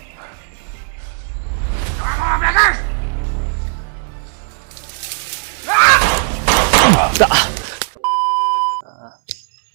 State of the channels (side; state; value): left; silent; 68 dB below the other